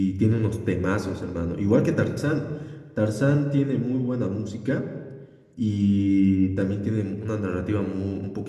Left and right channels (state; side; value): identical; both; correlation 1.00